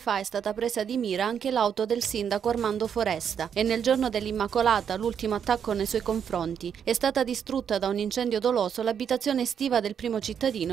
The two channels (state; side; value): quieter; left; 7.9 dB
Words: è stata presa di mira anche l'auto del sindaco Armando Foresta e nel giorno dell'Immacolata, l'ultimo attacco nei suoi confronti, è stata distrutta da un incendio doloso l'abitazione estiva del primo